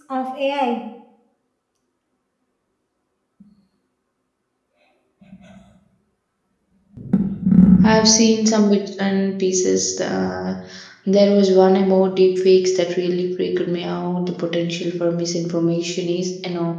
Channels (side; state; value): both; identical; correlation 1.00